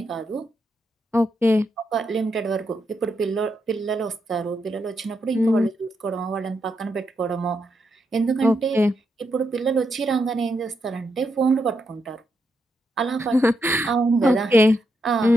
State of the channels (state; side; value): normal; both; correlation 0.82